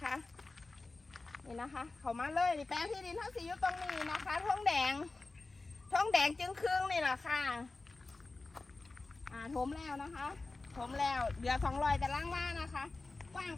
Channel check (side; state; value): right; quieter; 3.5 dB